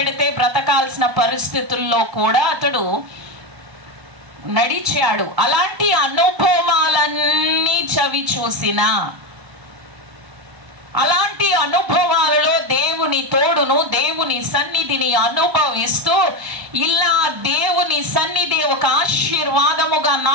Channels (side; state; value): left; late; 1.0 ms